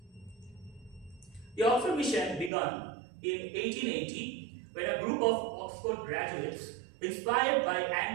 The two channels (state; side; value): drops out; left; at 2.5 s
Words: The Oxford Mission began in 1880 when a group of Oxford graduates, inspired by